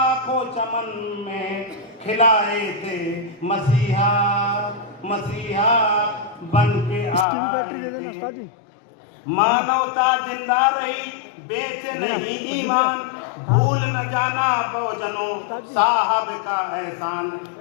चमन में खिलाए थे, मसीहा मसीहा बन के इसकी भी बैटरी दे देना उस्ताद जी। मानवता जिंदा रही, बेच नहीं ईमान, भूल न जाना बहुजनों साहब का एहसान।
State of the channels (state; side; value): drops out; right; at 7.2 s